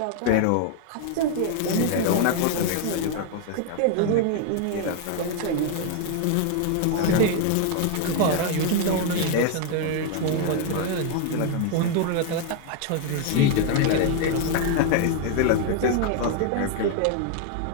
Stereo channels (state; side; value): different; both; correlation 0.00